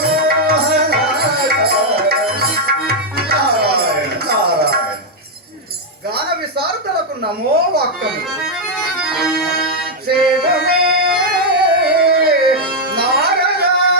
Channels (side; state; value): both; normal; correlation -0.01